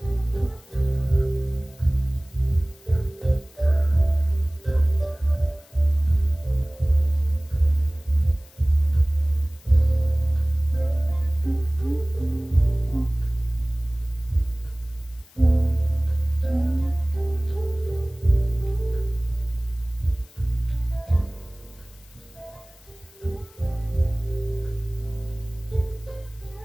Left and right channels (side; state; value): left; noise; hiss, 27 dB below the sound